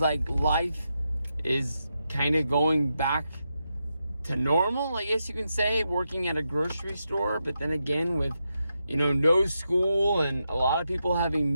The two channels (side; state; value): both; inverted; correlation -0.86